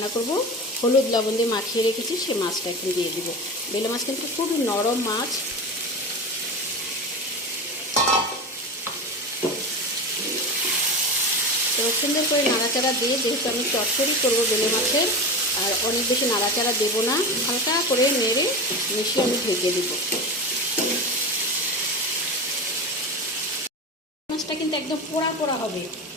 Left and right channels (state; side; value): normal; both; correlation 0.25